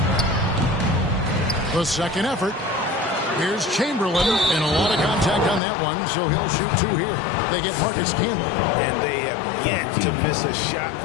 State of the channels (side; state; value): right; drops out; at 5.6 s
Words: The second effort. Here's Chamberlain, and a lot of contact on that one, so he'll shoot 2 here. They get Marcus Camby. And they have yet to miss a shot